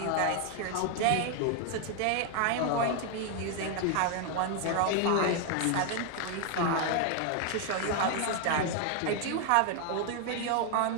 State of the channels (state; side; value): different; both; correlation 0.01